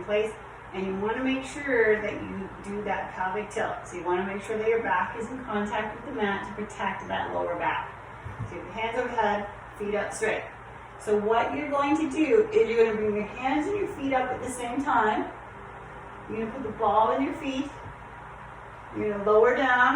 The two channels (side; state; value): both; identical; correlation 1.00